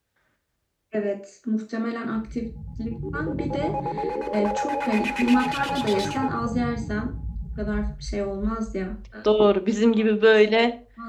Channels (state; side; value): identical; both; correlation 1.00